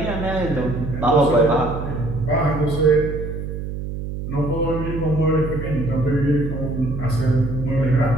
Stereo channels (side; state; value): right; noise; hum, 6 dB below the sound